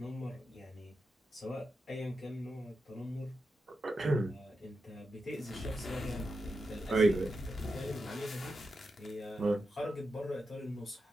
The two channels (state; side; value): normal; both; correlation 0.88